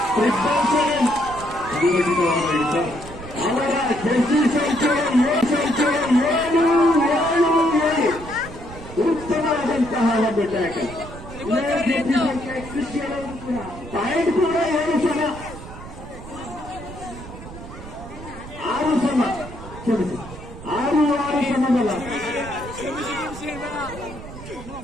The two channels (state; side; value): noise; right; rumble, 14 dB below the sound